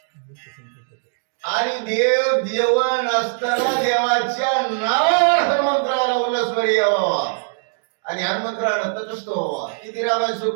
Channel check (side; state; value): left; silent; digital silence